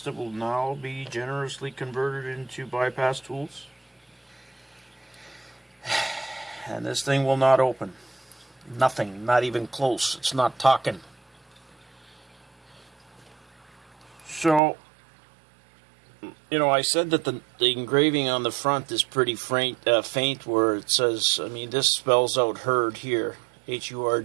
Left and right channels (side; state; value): left; drops out; at 14.6 s